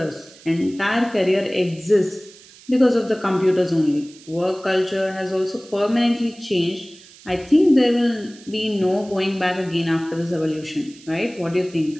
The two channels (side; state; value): right; noise; hiss, 22 dB below the sound